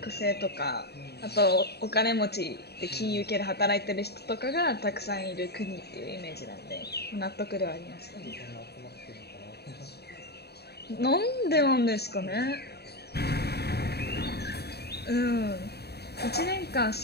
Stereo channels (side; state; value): right; late; 0.47 ms